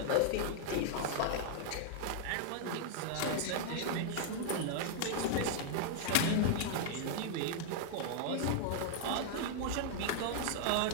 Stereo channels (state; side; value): different; both; correlation 0.00